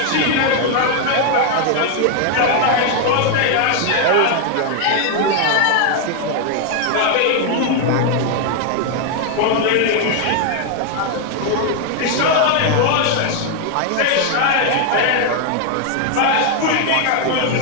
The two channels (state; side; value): different; both; correlation 0.00